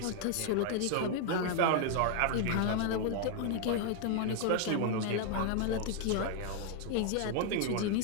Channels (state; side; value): different; both; correlation 0.00